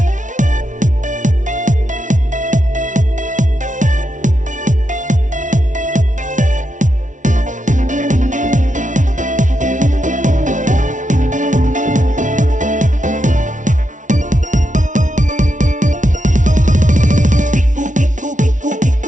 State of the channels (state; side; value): late; left; 0.37 ms